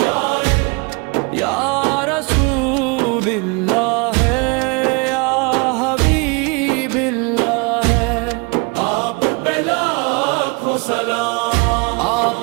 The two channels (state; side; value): quieter; left; 30.5 dB